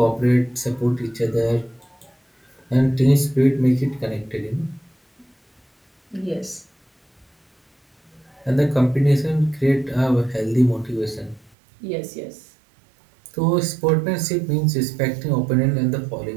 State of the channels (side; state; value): left; drops out; at 11.6 s